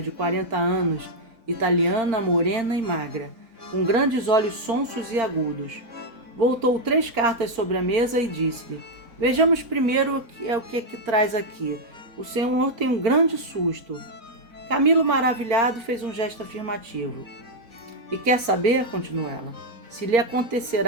40 anos, italiana, morena e magra, com grandes olhos sonsos e agudos. Voltou 3 cartas sobre a mesa e disse-lhe: Vejamos primeiro o que traz aqui. O senhor tem um grande susto. Camilo, maravilhado, fez um gesto afirmativo. E quer saber, continuou ela, se lhe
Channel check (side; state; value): left; late; 4.4 ms